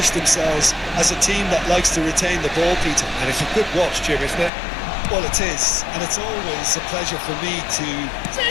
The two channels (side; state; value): right; drops out; at 4.5 s